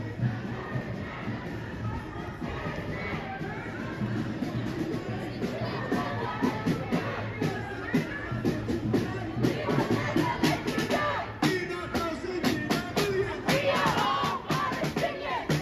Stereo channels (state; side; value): identical; both; correlation 1.00